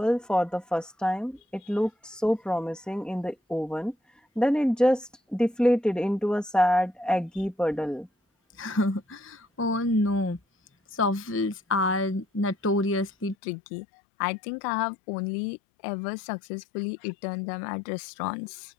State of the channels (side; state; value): right; drops out; at 13.4 s